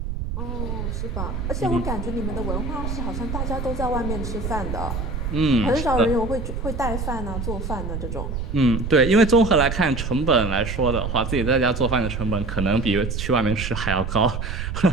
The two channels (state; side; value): noise; right; rumble, 4 dB below the sound